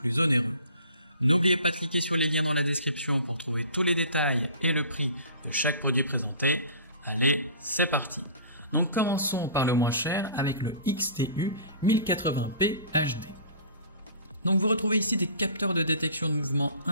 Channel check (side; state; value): both; inverted; correlation -0.44